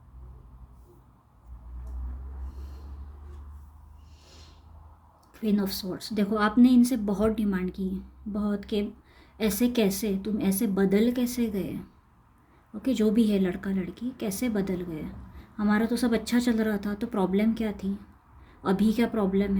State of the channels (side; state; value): both; identical; correlation 1.00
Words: Queen of swords. देखो आपने इनसे बहुत डिमांड की, बहुत, कि ऐसे कैसे तुम ऐसे बदल कैसे गए। ओके, जो भी है लड़का लड़की कैसे बदल गए। हमारा तो सब अच्छा चल रहा था, तो प्रॉब्लम क्या थी, अभी क्या प्रॉब्लम